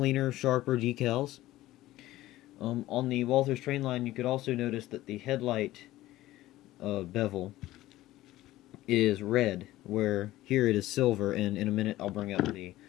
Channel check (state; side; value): quieter; right; 16.0 dB